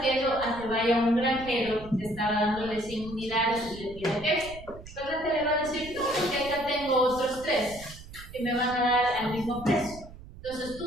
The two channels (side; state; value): right; noise; rumble, 16 dB below the sound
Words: queso a que vaya un granjero que estaba dándole 100 unidades y le pida queso. Entonces le va a decir, que acá tengo otros 3 que me van a dar al mismo precio. Entonces tú